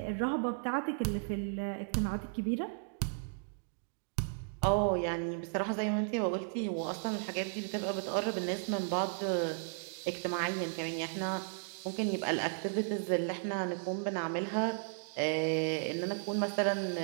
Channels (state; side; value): silent; left; digital silence